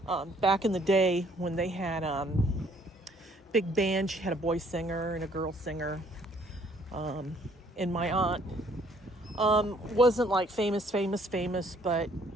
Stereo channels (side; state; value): both; normal; correlation 0.62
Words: back in the day when they had big band, she had a boy singer and a girl singer. And my aunt wasn't like famous, but